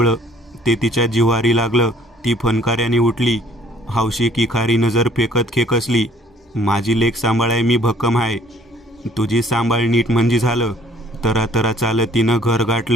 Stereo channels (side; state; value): both; normal; correlation 0.58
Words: ते तिच्या जिव्हारी लागलं. ती फनकाऱ्याने उठली. हौशी किखारी नजर फेकत खेकसली. माझी लेक सांभाळाय मी भक्कम आहे. तुझी सांभाळ नीट म्हणजे झालं. तरा चालत तिनं घर